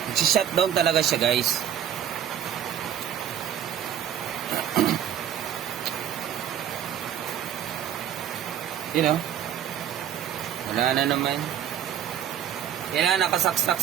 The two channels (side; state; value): left; quieter; 10.0 dB